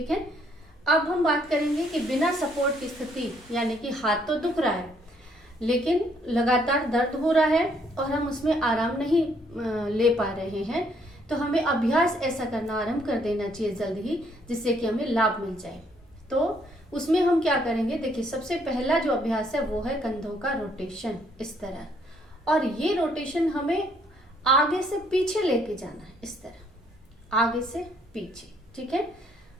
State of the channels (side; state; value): both; normal; correlation 0.68